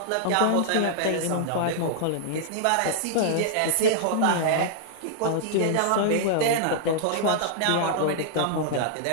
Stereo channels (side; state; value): both; different; correlation -0.01